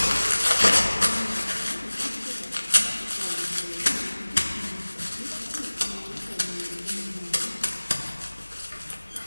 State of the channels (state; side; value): inverted; both; correlation -1.00